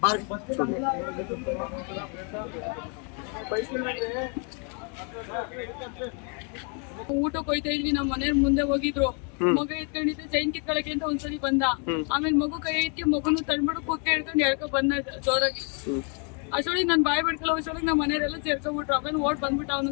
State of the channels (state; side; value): quieter; right; 38.8 dB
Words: ಊಟಕ್ಕೆ ಹೋಯ್ತಾ ಇದ್ವಿ, ನಮ್ಮ ಮನೆ ಮುಂದೆ ಹೋಗಿದ್ರು, ಮಗ ಎತ್ಕೊಂಡಿದ್ದೆ ಚೈನ್ ಕಿತ್ಕೊಳಕ್ಕೆ ಅಂತ ಒಂದ್ಸಲಿ ಬಂದ. ಆಮೇಲೆ ಮಗು ಕೈ ಎತ್ತಿ ಮಗುನು ತಳ್ಬಿಟ್ಟು ಕುಕ್ಕೆ ಹಿಡ್ಕೊಂಡು ಎಳ್ಕೊ ಬಂದ ಜೋರಾಗಿ. ಅಷ್ಟೊಳಗೆ ನನ್ ಬಾಯಿ ಬಿಡ್ಕಲ್ಲ, ಅಷ್ಟೊಳಗೆ ನಮ್ಮ ಮನೆಯವರೆಲ್ಲ ಸೇರ್ಕೊಂಡ್ಬಿಟ್ರು. ಆಮೇಲೆ ಓಡ್ ಬಂದ್ಬಿಟ್ಟು ಅವನು